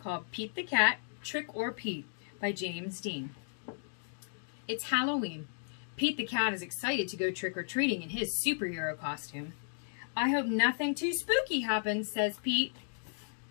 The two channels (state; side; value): silent; right; digital silence